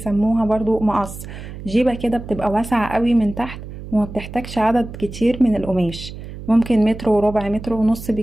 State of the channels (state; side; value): noise; right; hum, 12 dB below the sound